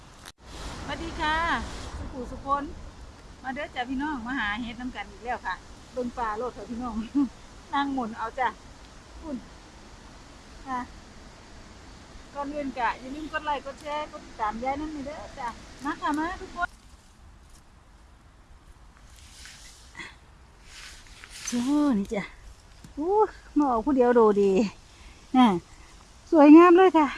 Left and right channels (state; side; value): identical; both; correlation 1.00